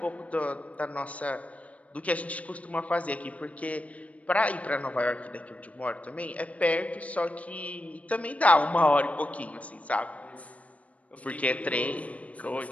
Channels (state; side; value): late; right; 0.067 ms